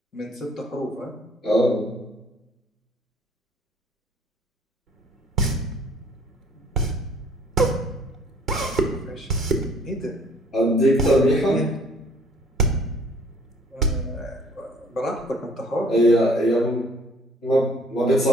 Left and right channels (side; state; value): both; normal; correlation 0.56